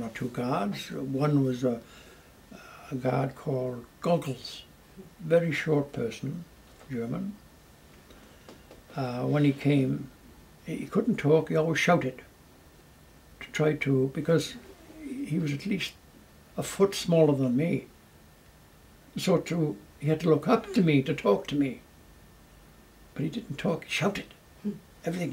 or 2 guards. One was a guard called Goggles, very short person, German. When he came, he couldn't talk, he always shouted to try to, because he was at least a foot smaller than me. So he had to look up to me to talk to me. But he didn't talk, he shouted. Everything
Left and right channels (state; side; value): identical; both; correlation 1.00